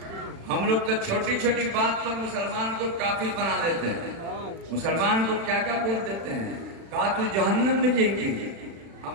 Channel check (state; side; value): late; left; 36 ms